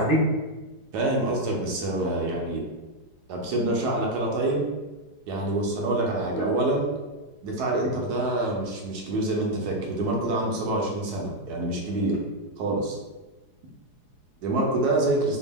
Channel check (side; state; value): left; late; 4.8 ms